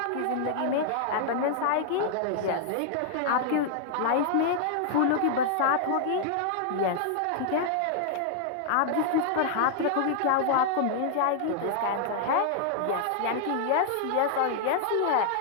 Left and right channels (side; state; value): both; different; correlation -0.01